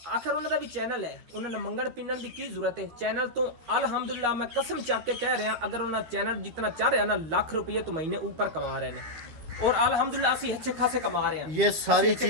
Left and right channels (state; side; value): late; left; 13 ms